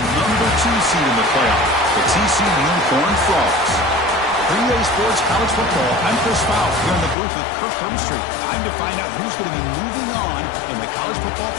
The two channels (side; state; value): right; drops out; at 7.2 s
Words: number 2 seed in the playoff, the TCU Horned Frogs. 3A Sports College Football, I'm Chris Fowler here in the booth with Kirk Hermstreet. Time to find out who's going to be moving on in the college football